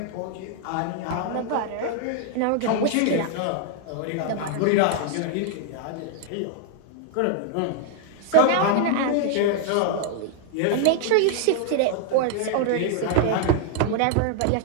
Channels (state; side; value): different; both; correlation 0.00